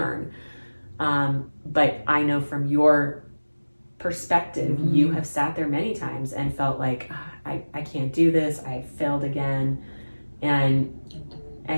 But I know from your perspective, you have sat there many times and felt like, I can't do this. I failed again. And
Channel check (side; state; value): both; inverted; correlation -1.00